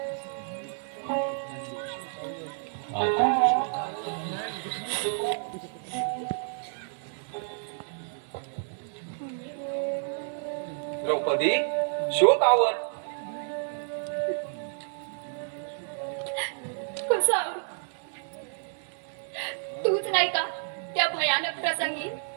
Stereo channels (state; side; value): silent; left; 58 dB below the other